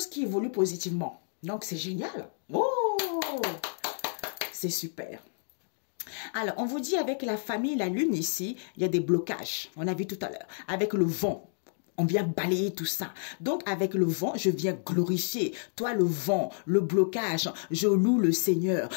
qui évoluent positivement. Donc, c'est génial. Oh, c'est super. Alors, on vous dit avec la famille, la lune ici, il y a des blocages. On a vu tout à l'heure. Avec le vent. On vient balayer tout ça. Donc, avec le vent, je viens glorifier. Toi, le vent, le blocage, je loue le Seigneur.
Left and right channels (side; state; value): right; silent; digital silence